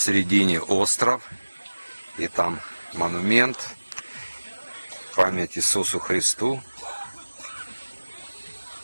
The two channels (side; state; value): both; inverted; correlation -1.00